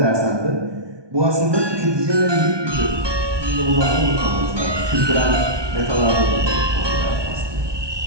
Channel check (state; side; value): late; left; 1.2 ms